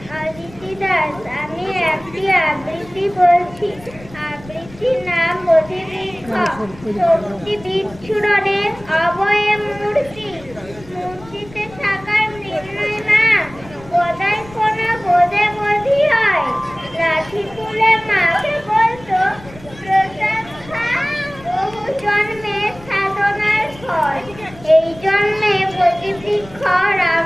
অদিতি দাস। আমি একটি আবৃত্তি বলছি। আবৃত্তির নাম বোধিবৃক্ষ। শক্তি বিচ্ছুরণের অবয়ে মূর্তি, মূর্তিতে থাকার নির্ণয় নাম বোধাই কোনা বোধে বোধি হয়। লাঠি তুলে মাকে বলতো প্রসাদ খা, বহু জন্মের সাধনার ফল। এই জন্মে বোধিবৃক্ষ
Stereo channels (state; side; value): noise; left; rumble, 20 dB below the sound